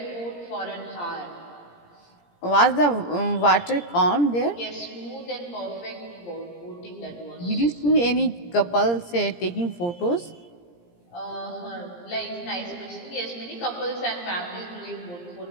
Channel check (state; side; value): late; right; 17 ms